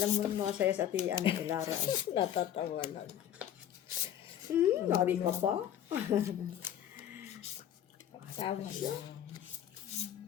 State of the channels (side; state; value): right; quieter; 10.6 dB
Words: mo mga saya sa ati, ano, si Lara. Natatawa lang. Nabi ka pa. Tawa siya.